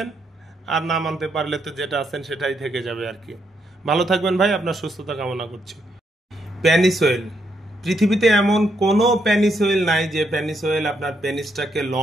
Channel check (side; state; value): both; normal; correlation 0.77